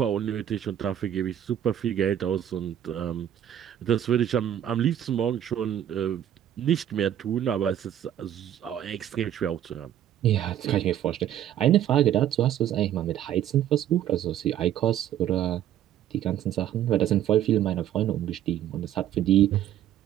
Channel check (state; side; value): quieter; left; 11.0 dB